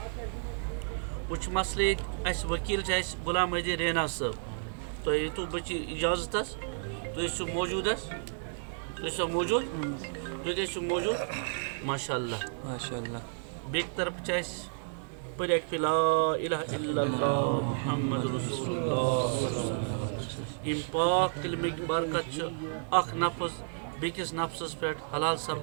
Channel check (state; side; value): silent; left; digital silence